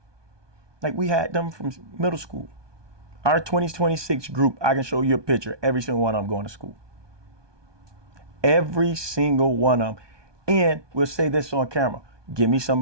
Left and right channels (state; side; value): late; left; 1.2 ms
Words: like we had them from middle school. Our 2026 group, I can show you a picture. Every single one of them going to school. Every single one of them. And we'll say this on camera. Give me